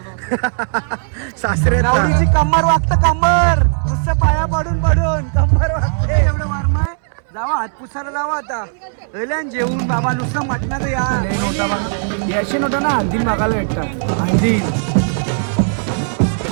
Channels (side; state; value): left; silent; 66 dB below the other